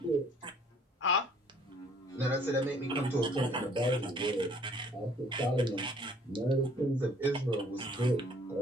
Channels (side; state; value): both; normal; correlation 0.58